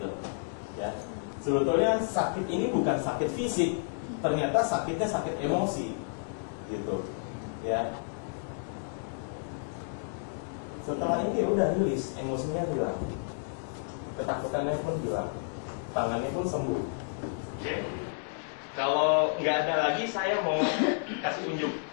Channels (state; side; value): silent; right; digital silence